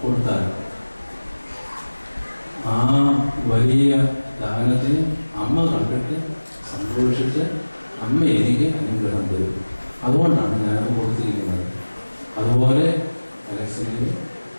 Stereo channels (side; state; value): both; inverted; correlation -1.00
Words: കൊടുത്താൽ ആ വലിയ ദാനത്തെ അമ്മ കണ്ടിട്ട് സന്തോഷിച്ച് അമ്മ എനിക്ക് അനുഗ്രഹം തരും. അതുകൊണ്ടാണ് ഞാനത് കൊടുത്തിരിക്കുന്നത്. അതുപോലെ അലക്സിനെയും